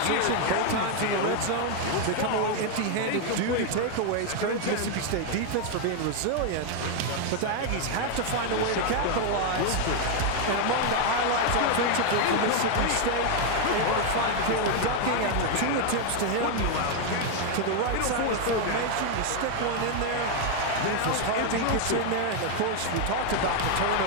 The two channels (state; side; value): different; both; correlation 0.00